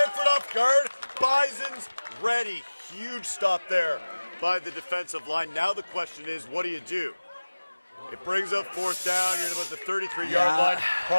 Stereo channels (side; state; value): both; inverted; correlation -1.00